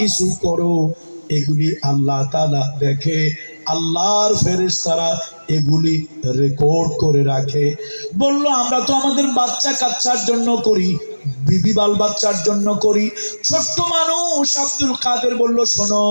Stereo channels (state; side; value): inverted; both; correlation -1.00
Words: করো এগুলি আল্লাহ তাআলা দেখে। আল্লাহর ফেরেশতারা এগুলি রেকর্ড করে রাখে। বলল, আমরা তো আমাদের বাচ্চা কাচ্চার জন্য করি, বিবি বাল বাচ্চার জন্য করি। ছোট্ট মানুষ আব্দুল কাদের বলল, শোনো,